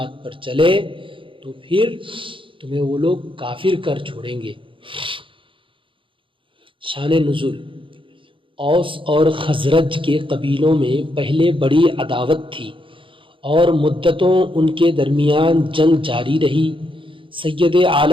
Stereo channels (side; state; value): left; late; 0.25 ms